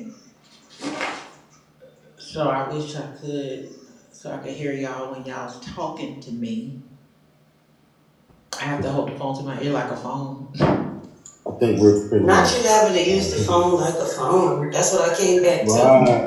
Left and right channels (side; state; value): both; identical; correlation 1.00